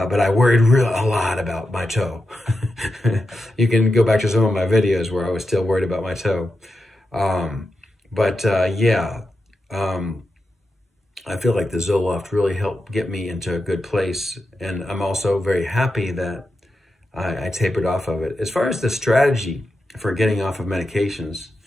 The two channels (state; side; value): normal; both; correlation 0.89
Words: I worried a lot about my toe. You can go back to some of my videos where I was still worried about my toe. I feel like the Zoloft really helped get me into a good place. And I'm also very happy that I tapered off of it. As far as the strategy for getting off of medications,